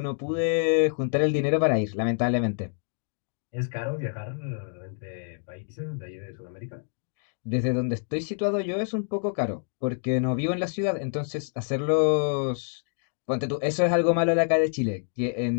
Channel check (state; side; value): silent; right; digital silence